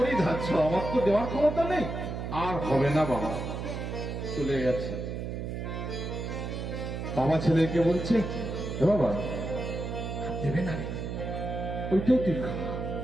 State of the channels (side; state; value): right; noise; hum, 5 dB below the sound